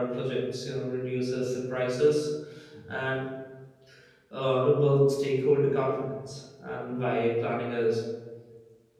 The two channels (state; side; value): identical; both; correlation 1.00